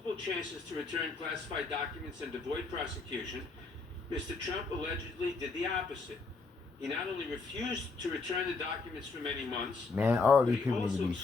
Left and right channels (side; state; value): right; quieter; 4.0 dB